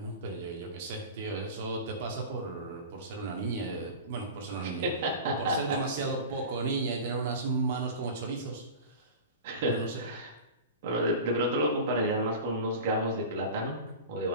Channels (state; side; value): inverted; both; correlation -0.32